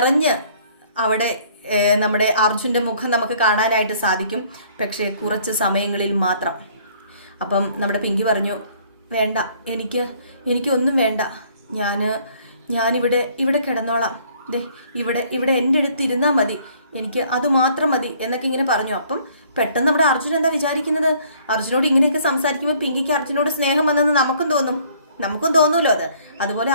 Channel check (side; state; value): both; inverted; correlation -0.60